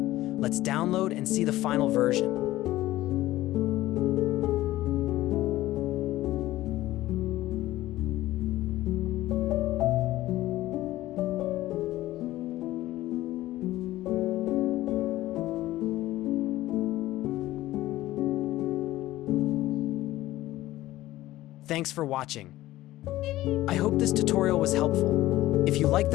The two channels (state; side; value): quieter; right; 16.0 dB